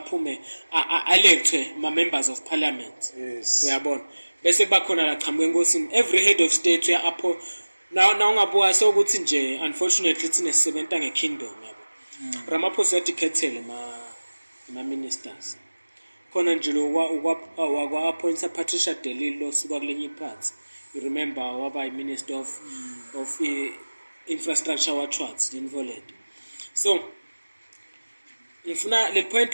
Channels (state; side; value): inverted; both; correlation -1.00